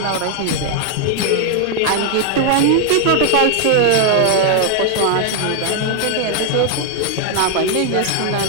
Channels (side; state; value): both; different; correlation 0.00